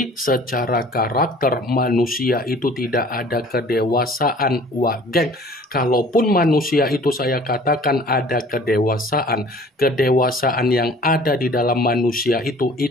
secara karakter manusia itu tidak ada kedewasaan. Wah geng, kalaupun manusia itu saya katakan ada kedewasaan yang ada di dalam manusia itu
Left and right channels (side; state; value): both; normal; correlation 0.50